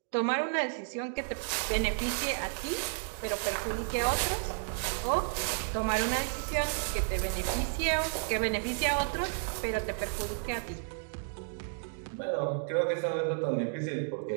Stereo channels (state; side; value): silent; left; digital silence